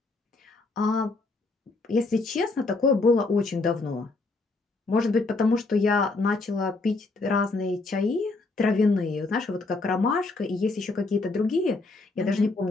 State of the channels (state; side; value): quieter; right; 3.5 dB